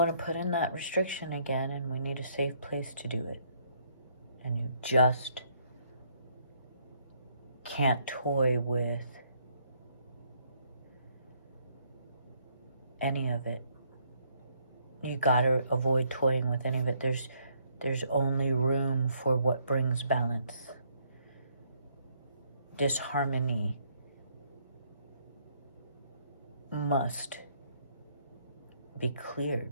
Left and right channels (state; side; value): inverted; both; correlation -0.69